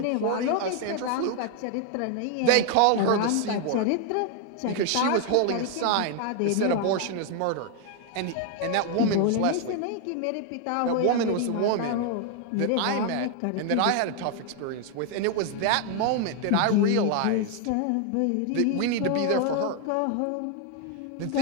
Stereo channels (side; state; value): both; different; correlation 0.00